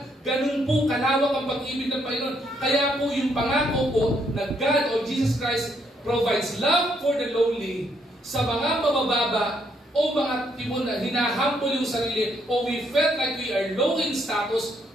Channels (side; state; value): both; normal; correlation 0.72